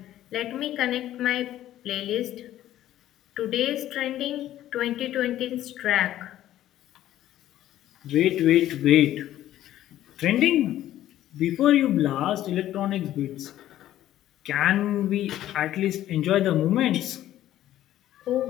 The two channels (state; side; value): quieter; right; 13.1 dB